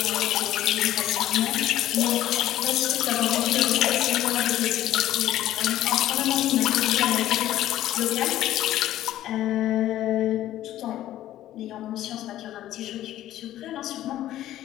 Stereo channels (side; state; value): right; quieter; 13.3 dB